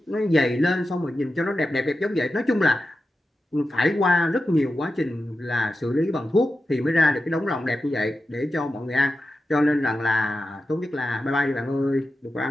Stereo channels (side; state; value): both; normal; correlation 0.91